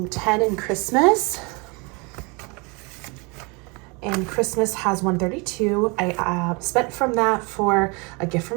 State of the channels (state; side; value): quieter; left; 29.8 dB